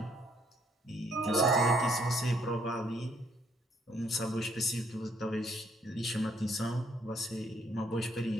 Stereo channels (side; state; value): both; normal; correlation 0.68